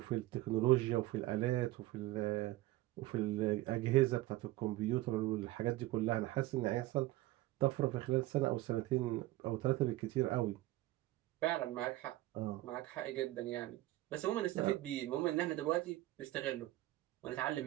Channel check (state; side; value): quieter; left; 17.4 dB